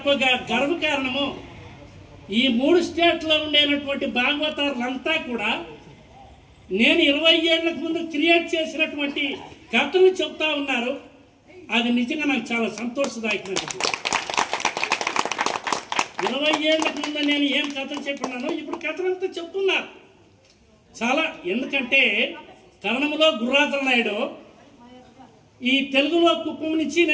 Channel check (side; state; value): both; identical; correlation 1.00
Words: ఒక గర్వకారణము, ఈ 3 స్టేట్లో ఉండేటువంటి భాగవతారులంతా కూడా నేను 20 ఏళ్లకు ముందు క్రియేట్ చేసినటువంటి కథలు చెప్తా ఉన్నారు. అది నిజంగా నాకు చాలా సంతోషదాయకమైనది. 20 ఏళ్లకు ముందు నేను ఏం కథలు చెప్పినానో ఇప్పుడు కథలంతా చెప్తున్నారు చాలా. ఎందుకంటే కన్నడములో గుర్రాజల నాయుడు, ఈ తెలుగులో కుప్పం నుంచి